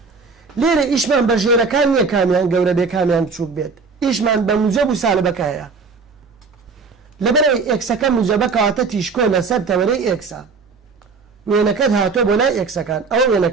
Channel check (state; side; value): quieter; left; 4.7 dB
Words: لێرە ئیشمان بە ژێرەکان نییە کامیان گەورە بێ کامیان بچووک بێت ئیشمان بە موجەب و سالبەکە هەیە لەبەرەوەی ئێکسەکە موجەبە کەواتە تیشکۆ لەسەر تەوەرەی ئێکسە وێنەکەت هاتۆ بۆ لای ئێکسەکان ئەوە